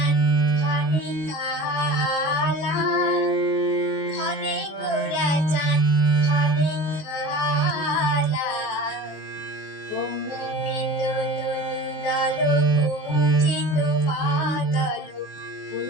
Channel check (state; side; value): late; right; 19 ms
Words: ঘনে কালা ঘনে ঘোরা চাঁদ ঘনে কালা কম্পিত তনুদল কুঞ্চিত বাদল